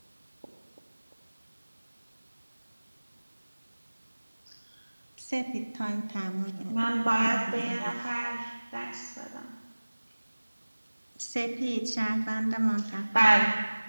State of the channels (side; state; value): both; inverted; correlation -1.00